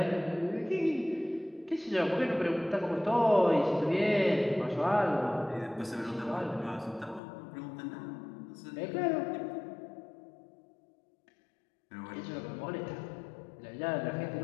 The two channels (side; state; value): right; drops out; at 7.2 s